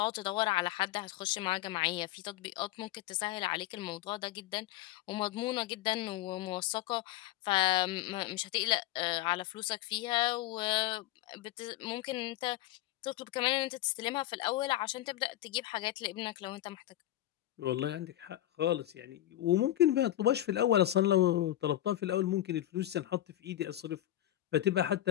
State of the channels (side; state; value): right; quieter; 14.3 dB